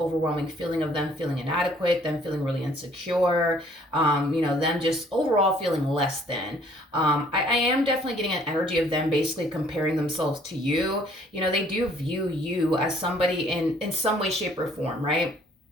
feeling of them feeling inadequate, them feeling really insecure, them just overall feeling less than. I am definitely getting an energy of them basically comparing themselves to you. They do view you as somebody in some way, shape, or form, right?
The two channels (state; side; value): normal; both; correlation 0.59